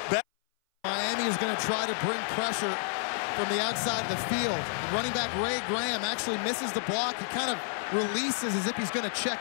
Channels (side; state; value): right; silent; 57 dB below the other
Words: Miami is going to try to bring pressure from the outside of the field. And running back Ray Graham actually misses the block. He kind of releases as if he's going to